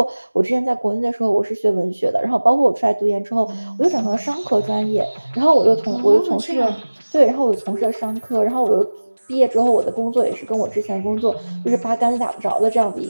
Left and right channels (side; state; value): both; inverted; correlation -1.00